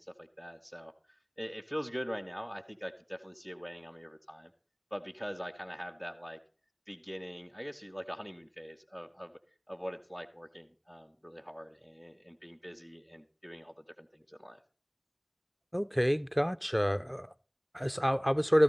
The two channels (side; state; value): both; identical; correlation 1.00